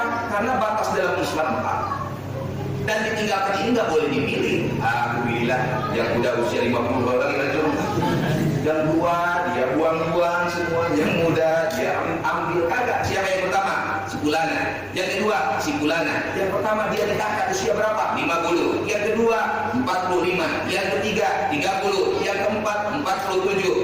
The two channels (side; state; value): both; identical; correlation 1.00